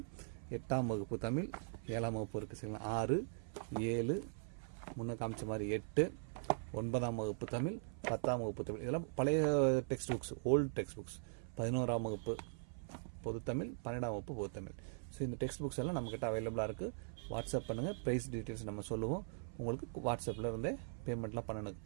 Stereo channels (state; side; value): silent; left; 50 dB below the other